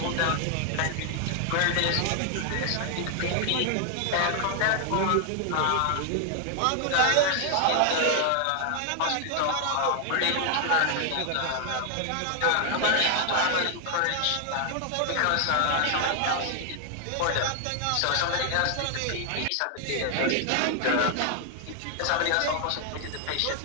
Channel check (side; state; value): both; different; correlation 0.00